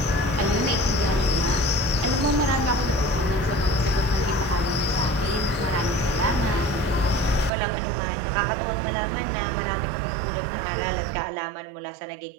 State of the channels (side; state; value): left; drops out; at 7.5 s